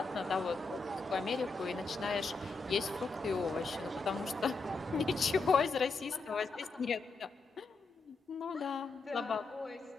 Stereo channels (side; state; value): right; quieter; 3.9 dB